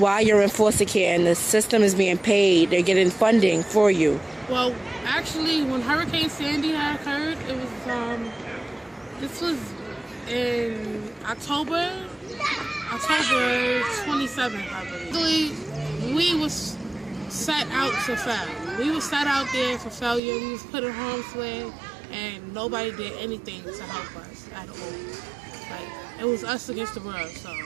you're in foster care, and the system is being paid. They're getting funding for you. Well, actually, when Hurricane Sandy had occurred, it was, this was in October 27th, I believe. We was set out to fail. We was set out there for failure. We was put in harm's way, and nobody did anything to help us at all. Like, it was us against the world. So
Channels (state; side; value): drops out; left; at 20.2 s